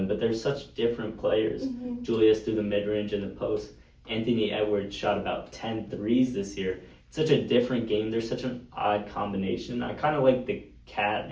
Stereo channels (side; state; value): both; identical; correlation 1.00